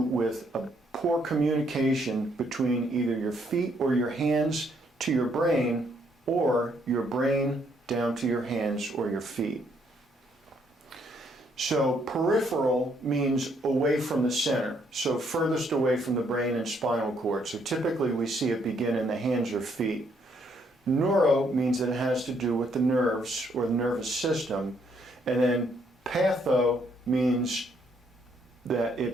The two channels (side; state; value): both; normal; correlation 0.70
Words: a poor communication between either your feet or your hands to your brain, or your brain down to your hands or your feet. So peripheral means away from the center, so furthest away from the brain and spinal cord. So typically we see it begin in the hands or feet. Neuro means that it has to do with the nerves or the nervous system. And then patho means that